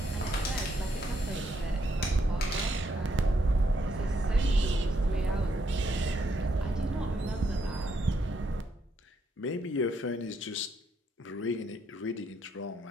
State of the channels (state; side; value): normal; both; correlation 0.76